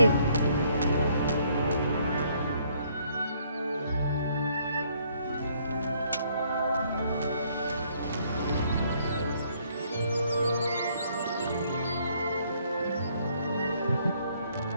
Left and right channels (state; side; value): inverted; both; correlation -0.66